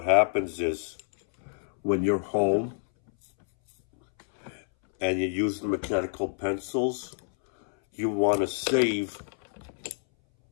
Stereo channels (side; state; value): right; silent; 60 dB below the other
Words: happens is when you're home and you use the mechanical pencils, you want to save